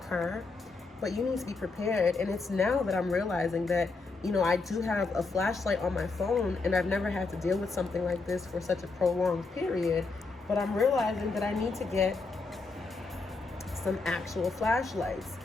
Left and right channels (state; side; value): quieter; right; 3.9 dB